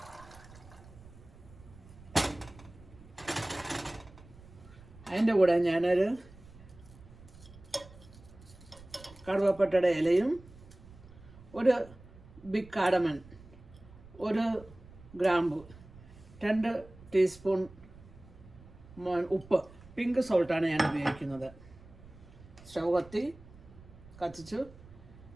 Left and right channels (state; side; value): noise; right; rumble, 21 dB below the sound